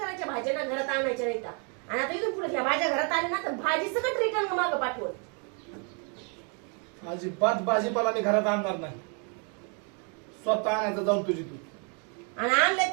भाज्या ना घरात आणायच्या नाही का. आणि आता इथून पुढे ह्या भाज्या घरात आल्या ना तर भाजी सगळं रिटर्न मागं पाठवत. अजिबात भाजीपाला मी घरात आणणार नाही. स्वतः आणायचं जाऊन तुझी तू. आणि आणले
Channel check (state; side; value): quieter; left; 37.8 dB